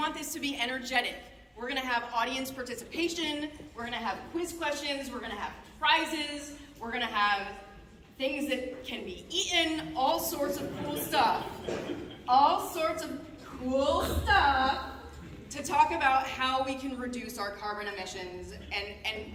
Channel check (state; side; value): identical; both; correlation 1.00